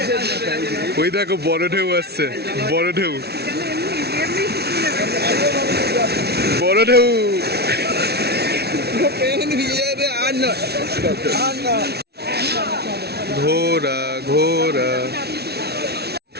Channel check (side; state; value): left; late; 0.48 ms